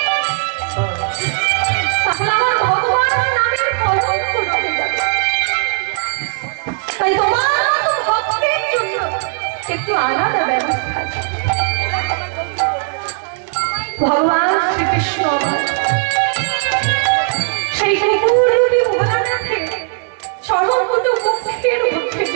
তাহলে আমার ভগবানের নামের কলঙ্ক রয়ে যাবে। তাই তোমার মতো ভক্তের জন্য একটু আলাদা ব্যবস্থা আছে। ভগবান শ্রীকৃষ্ণ সেই কুকুররূপী ভোলানাথে চরণ দুটো মুখের মধ্যে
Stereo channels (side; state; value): left; silent; digital silence